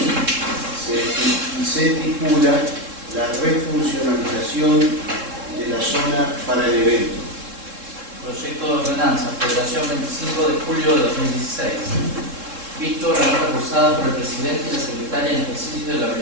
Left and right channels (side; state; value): left; late; 3.7 ms